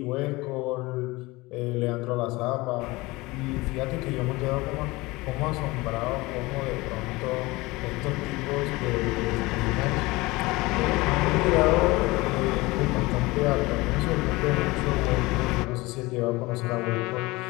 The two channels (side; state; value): right; quieter; 21.9 dB